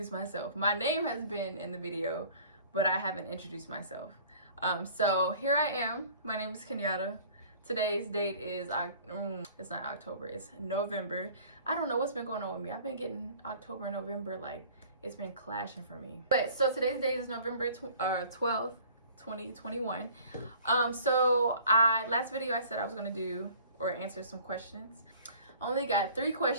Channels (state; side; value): inverted; both; correlation -0.50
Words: myself. My name has been in the video, but I haven't introduced myself. So here I am. My name is Kenyatta. Today's date is, it's not October, it's November. I don't know what's been going on with me. I've been getting October and November, like, it's been clashing for me. But so today's date is November 12th. 2021. So last video I said I was gonna do or answer some questions. Only got 3